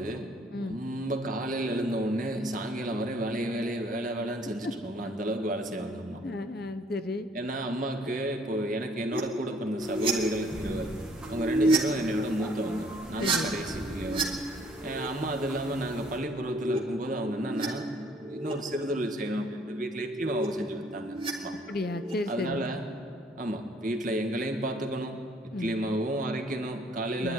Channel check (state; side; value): normal; both; correlation 0.61